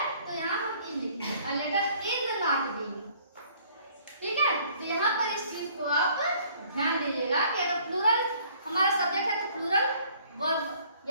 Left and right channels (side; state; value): both; inverted; correlation -0.58